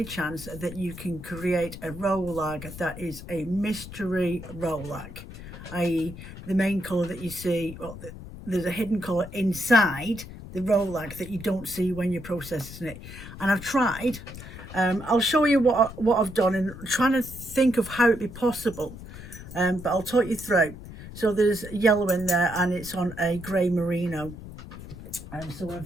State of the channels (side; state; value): left; noise; rumble, 13 dB below the sound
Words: chance that you can create a rolag that is a mystery rolag, i.e. the main colour that you see, well, there's a hidden colour inside the rolag that you don't see when you're processing it? And I've tried. I'll show you what I've done and trying to think of how it'd be possible, but I'll talk you through. So there's yellow in there and it's on a grey merino, so